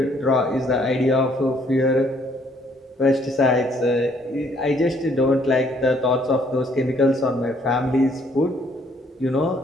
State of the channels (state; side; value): normal; both; correlation 0.64